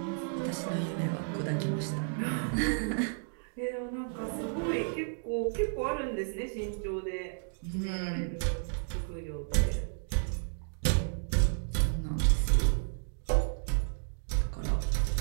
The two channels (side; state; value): left; silent; digital silence